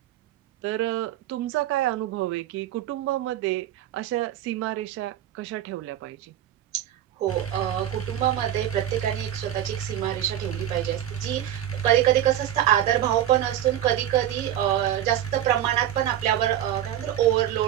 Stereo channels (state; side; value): quieter; left; 11.7 dB